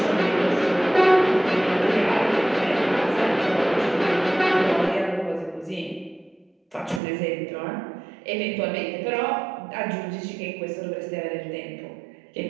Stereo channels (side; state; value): left; drops out; at 7.0 s